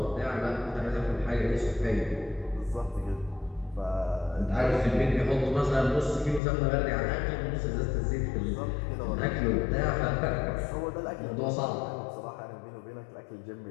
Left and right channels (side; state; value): right; drops out; at 6.4 s